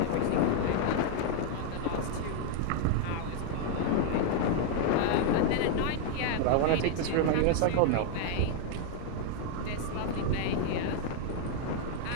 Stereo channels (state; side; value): different; both; correlation 0.00